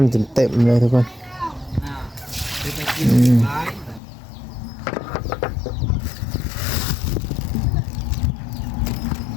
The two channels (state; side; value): drops out; right; at 4.0 s